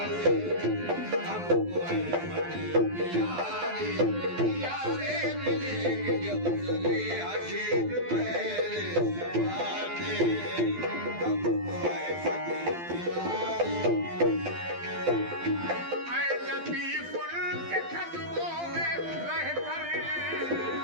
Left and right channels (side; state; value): left; late; 12 ms